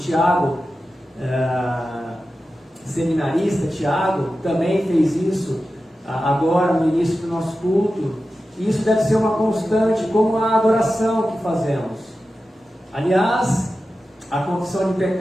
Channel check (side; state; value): both; normal; correlation 0.93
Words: seminarista Tiago, também fez isso agora no início do nosso culto. E isso deve ser uma constante, como a adoração que fazemos. Aliás, a confissão de